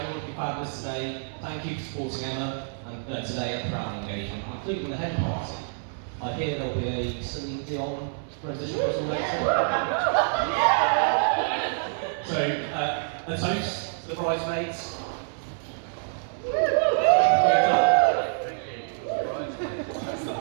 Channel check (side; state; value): left; silent; 60 dB below the other